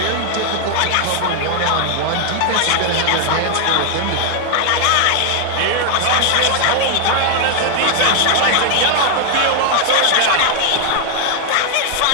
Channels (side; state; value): both; different; correlation 0.00